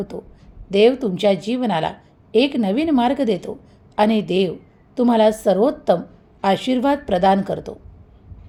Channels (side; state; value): both; identical; correlation 1.00